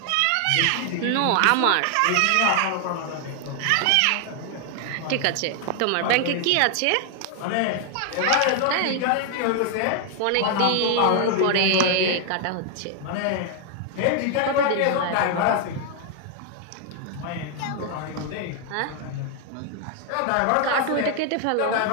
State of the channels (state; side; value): different; both; correlation 0.00